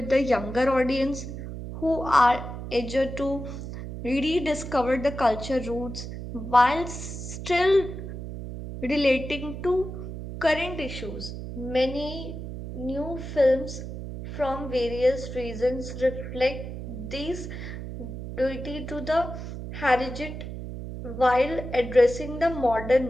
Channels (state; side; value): noise; right; hum, 8 dB below the sound